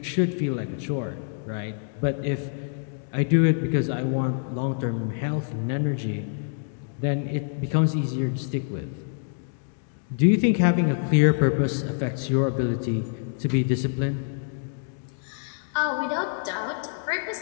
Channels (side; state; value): right; silent; digital silence